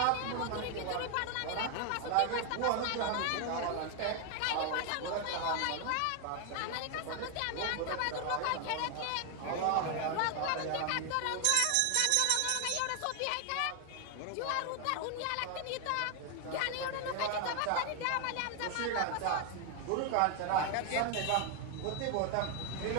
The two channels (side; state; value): both; different; correlation 0.01